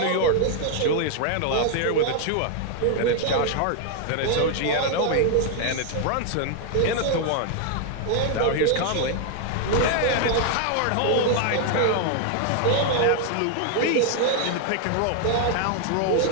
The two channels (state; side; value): different; both; correlation 0.00